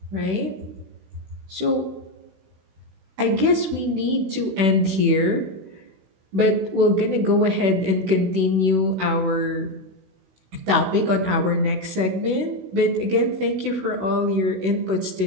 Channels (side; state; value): left; late; 16 ms